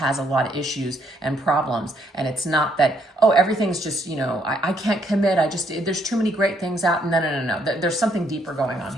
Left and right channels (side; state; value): both; normal; correlation 0.70